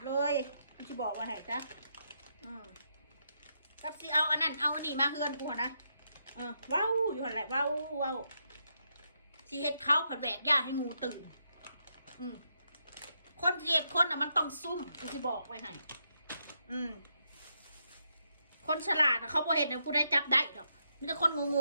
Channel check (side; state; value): both; inverted; correlation -0.80